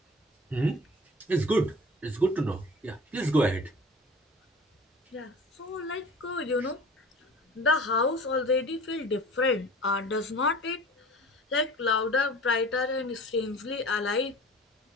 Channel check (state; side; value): normal; both; correlation 0.41